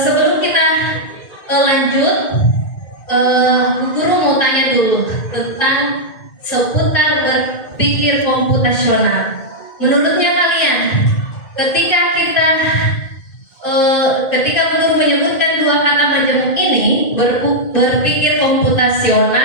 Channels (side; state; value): right; late; 2.2 ms